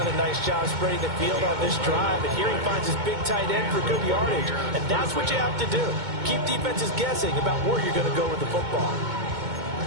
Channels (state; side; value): late; left; 2.2 ms